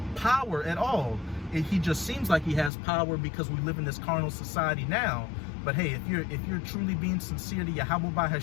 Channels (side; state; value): right; drops out; at 2.7 s